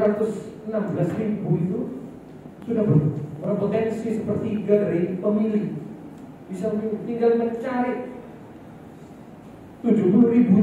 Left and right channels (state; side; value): identical; both; correlation 1.00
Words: itu sudah berpotensi sepertiga dari pemilih. Bisa tinggal mencari